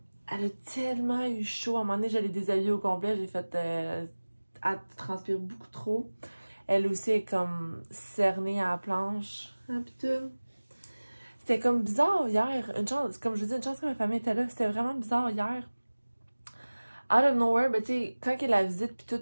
elle a tellement eu chaud. À un moment donné, j'allais déshabiller au complet, j'ai fait... elle transpire beaucoup trop. Elle aussi est comme cernée à la planche. Ah putain. C'était comme bizarre hier. Une chance, comme je vous dis, une chance que ma famille était là. C'était vraiment bizarre hier. Out of nowhere, ben tu sais, quand elle a la visite puis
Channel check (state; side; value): inverted; both; correlation -1.00